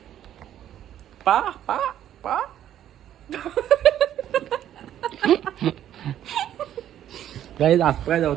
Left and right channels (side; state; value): left; quieter; 11.2 dB